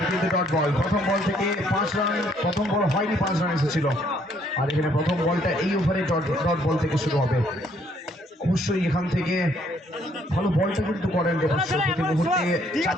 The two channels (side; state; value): both; normal; correlation 0.67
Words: কিন্তু ডট বল, প্রথম বল থেকে 5 রান, প্রথম বল হয়নি 5 রান এসেছিল, আর এখানে প্রথম বলটা এই ওভারে ডট বল থেকে শুরু হবে। অবশ্যই এখান থেকে ভালো বলটা কিন্তু করেন দেবাংশ, প্রতি মুহূর্তে